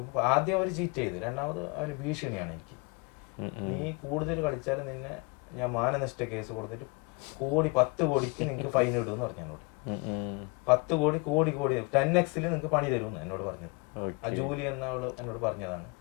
ആദ്യം അവർ ചീറ്റ് ചെയ്ത്, രണ്ടാമത് അവന് ഭീഷണിയാണ് എനിക്ക്, നീ കൂടുതൽ കളിച്ചാൽ നിന്നെ ഞാൻ മാനനഷ്ട കേസ് കൊടുത്തിട്ട് 10 കോടിക്ക് നിങ്ങൾക്ക് ഫൈൻ ഇടുമെന്ന് പറഞ്ഞു എന്നോട്. 10 കോടി 10x നിങ്ങൾക്ക് പണി തരുമെന്ന് എന്നോട് പറഞ്ഞത്. ആ ജൂലി എന്ന അവള് എന്നോട് പറഞ്ഞതാണ്,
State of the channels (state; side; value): quieter; right; 28.5 dB